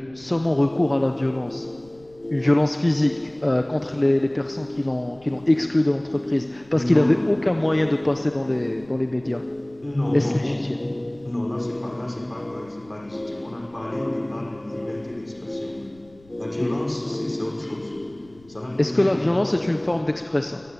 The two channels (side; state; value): left; noise; rumble, 28 dB below the sound